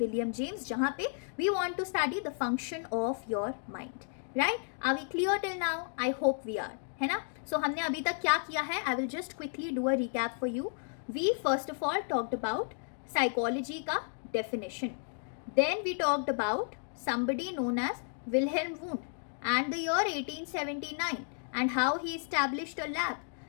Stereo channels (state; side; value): silent; right; 56 dB below the other